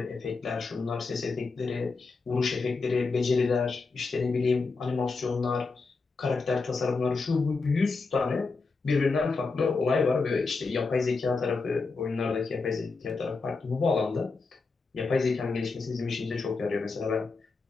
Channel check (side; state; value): right; quieter; 4.2 dB